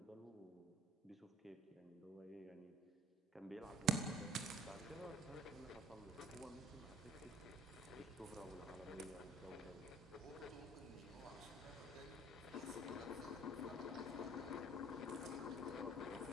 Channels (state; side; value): normal; both; correlation 0.52